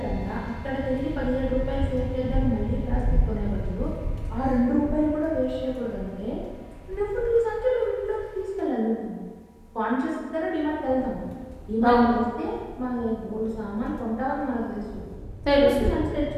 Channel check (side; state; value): both; identical; correlation 1.00